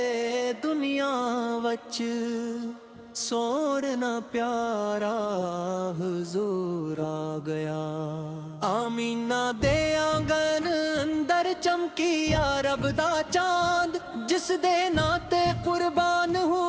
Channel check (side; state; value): both; identical; correlation 1.00